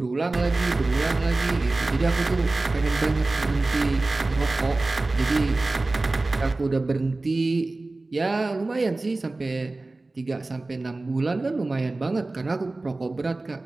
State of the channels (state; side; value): quieter; left; 3.1 dB